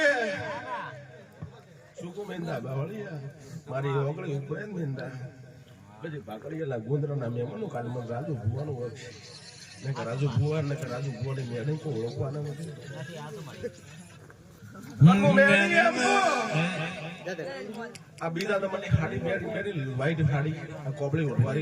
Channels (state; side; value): identical; both; correlation 1.00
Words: શું કહું મિંદા બાવળિયા મારી ઓગળી ઉપડે ને મિંદા. પછી ભાકડીયા ગુંદરાના મહેમાનો કાલે મને રાજુ ભુવાનું હોય ને કે રાજુ ભુવા ને કે રાજુ ભુવાની મેડમ કોઈ ઓળખવાના નથી. આ બીજા નંબરની ખાડી મેળી વ્હાઈટ ખાડી, આ કોબળી